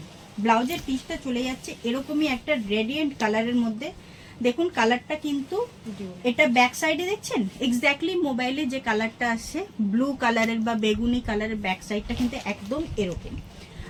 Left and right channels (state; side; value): identical; both; correlation 1.00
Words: ব্লাউজের পিসটা চলে যাচ্ছে এরকমই একটা রেডিয়েন্ট কালারের মধ্যে। দেখুন কালারটা কিন্তু, এটা ব্যাক সাইডে দেখছেন এক্স্যাক্টলি মোবাইলে যে কালারটা আসছে ব্লু কালারের বা বেগুনি কালারের, ব্যাক সাইডটা কিন্তু একদম এরকম।